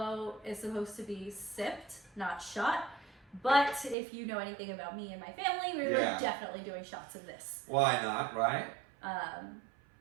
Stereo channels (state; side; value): drops out; left; at 4.0 s